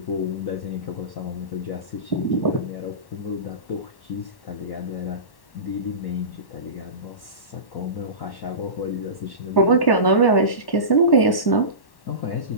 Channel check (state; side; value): late; right; 1.1 ms